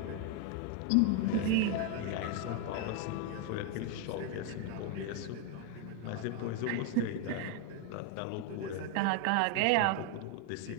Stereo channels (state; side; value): different; both; correlation 0.01